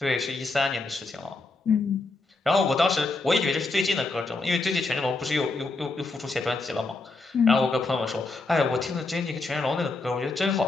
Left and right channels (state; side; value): quieter; right; 3.5 dB